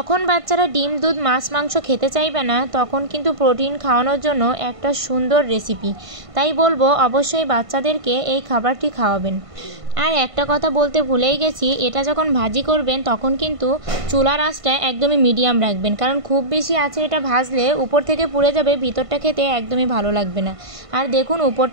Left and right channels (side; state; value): left; late; 1.5 ms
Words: বাচ্চারা ডিম, দুধ, মাছ, মাংস খেতে চাইবে না, তখন কিন্তু প্রোটিন খাওয়ানোর জন্য একটা সুন্দর রেসিপি। তাই বলবো অবশ্যই বাচ্চাদেরকে এই খাবারটি খাওয়াবেন। আর একটা কথা বলতে ভুলেই গেছি, এটা যখন ভাজি করবেন তখন কিন্তু চুলার আঁচটা একদমই মিডিয়াম রাখবেন, কারণ খুব বেশি আছে এটা ভাজলে উপর থেকে পুড়ে যাবে, ভিতরটা খেতে একদমই ভালো লাগবে না। আর দেখুন